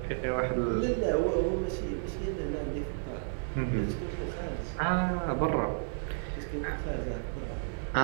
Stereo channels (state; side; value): silent; left; 57 dB below the other